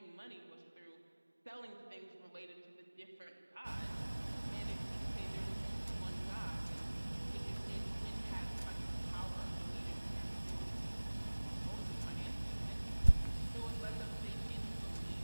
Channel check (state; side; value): inverted; both; correlation -1.00